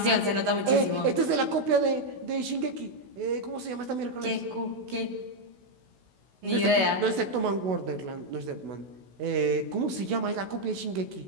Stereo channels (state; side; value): late; left; 16 ms